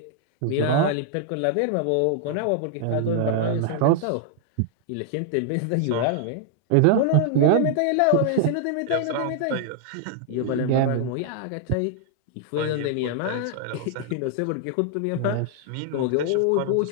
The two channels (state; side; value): different; both; correlation -0.01